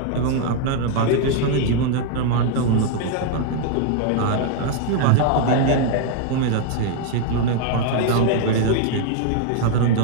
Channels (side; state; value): both; different; correlation 0.00